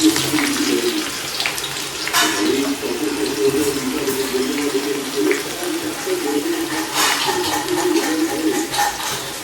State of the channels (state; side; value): identical; both; correlation 1.00